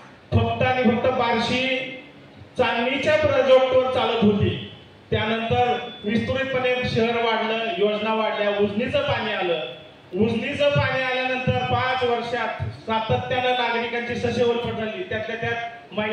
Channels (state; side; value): identical; both; correlation 1.00